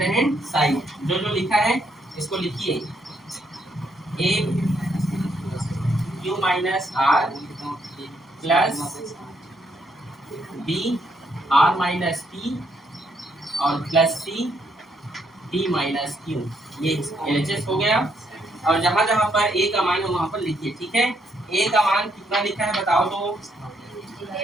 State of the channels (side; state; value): both; normal; correlation 0.74